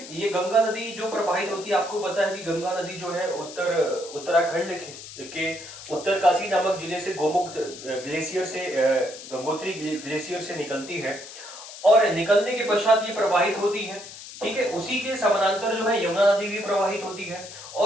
ये गंगा नदी जो प्रवाहित होती है, आपको पता है कि गंगा नदी जो है उत्तराखंड के उत्तरकाशी नामक जिले से गोमुख ग्लेशियर से, गंगोत्री ग्लेशियर से निकलती है और निकलने के पश्चात ये प्रवाहित होती है। ठीक है, उसी के समानांतर जो है यमुना नदी भी प्रवाहित होती है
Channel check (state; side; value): noise; left; hiss, 14 dB below the sound